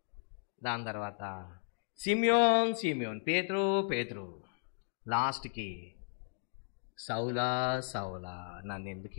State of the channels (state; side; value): silent; right; digital silence